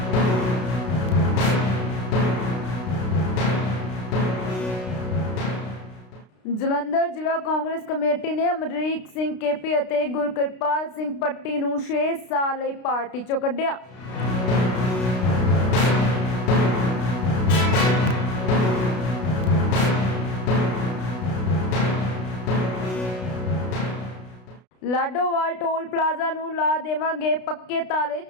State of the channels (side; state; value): right; late; 32 ms